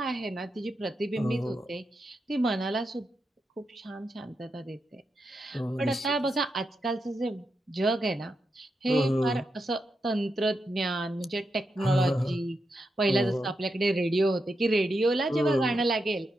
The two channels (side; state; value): both; normal; correlation 0.86